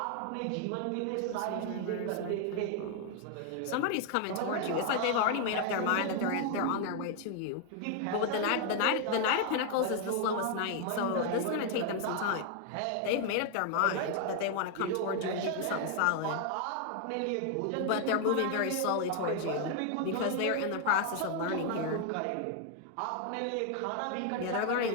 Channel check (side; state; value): both; different; correlation 0.00